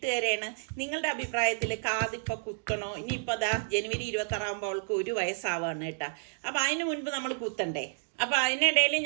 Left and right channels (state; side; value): silent; left; digital silence